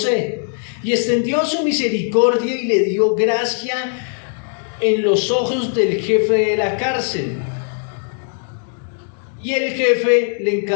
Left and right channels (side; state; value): right; silent; 56 dB below the other